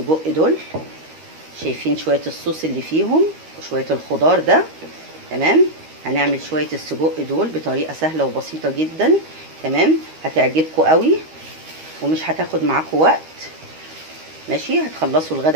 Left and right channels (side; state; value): left; late; 13 ms